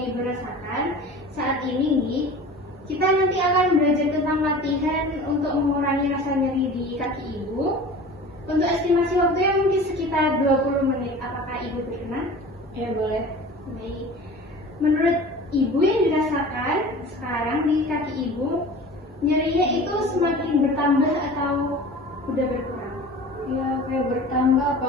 Ibu rasakan saat ini nih. Kita nanti akan belajar tentang latihan untuk mengurangi rasa nyeri di kaki Ibu. Untuk estimasi waktunya mungkin sekitar 20 menit. Apakah Ibu berkenan? Ya boleh. Baik. Menurut Ibu yang dirasakan sekarang di kaki Ibu, nyerinya itu semakin bertambah atau udah berkurang? Ya kayak bertambah,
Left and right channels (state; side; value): normal; both; correlation 0.39